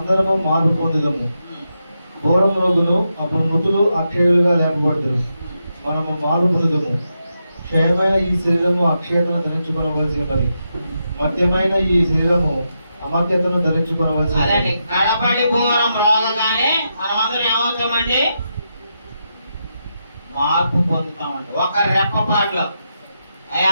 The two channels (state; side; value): inverted; both; correlation -0.85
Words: మార్పు పొందుదము. బోరం రోగులు అప్పుడు మృతులు అక్షయులుగా లేపబడుతురు, మనము మార్పు పొందుదము. క్షయమైన ఈ శరీరము అక్షయతను ధరించుకొనవలసి ఉన్నది, మధ్యమైన ఈ శరీరము అమర్త్యతను ధరించుకొనవలసి అదండి. ఉన్నది. కడపడి పూరం రోగగానే మనమందరం ఏమవుతామండి? మార్పు పొందుతామండి. ఒక రెప్పపాటులో.